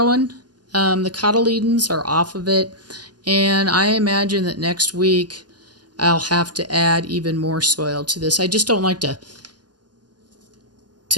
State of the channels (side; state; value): left; late; 0.70 ms